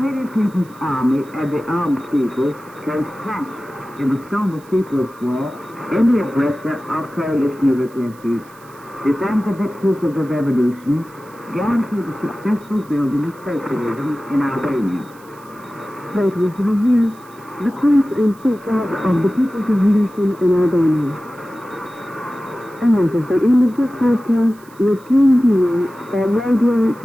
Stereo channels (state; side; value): noise; right; hiss, 27 dB below the sound